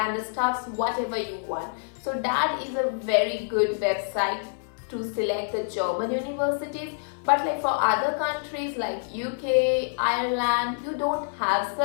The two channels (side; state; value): right; silent; 60 dB below the other